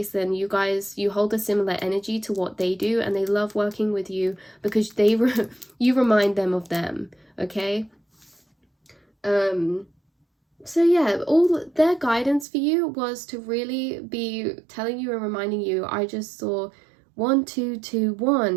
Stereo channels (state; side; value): drops out; left; at 12.5 s